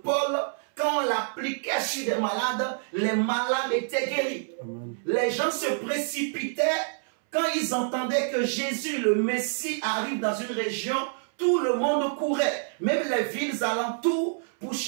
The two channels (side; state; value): left; silent; 60 dB below the other